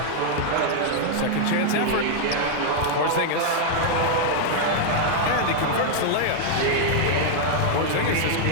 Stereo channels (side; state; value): both; different; correlation -0.01